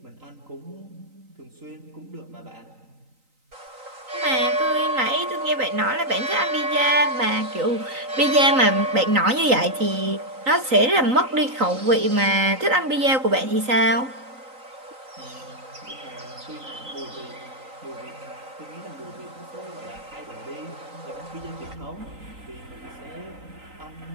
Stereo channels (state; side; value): late; left; 3.9 ms